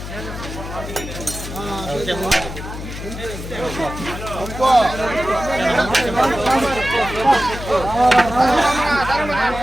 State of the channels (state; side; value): noise; left; hum, 9 dB below the sound